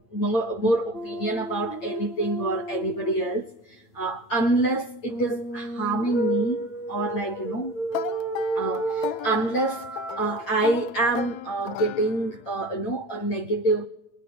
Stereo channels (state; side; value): late; right; 8.9 ms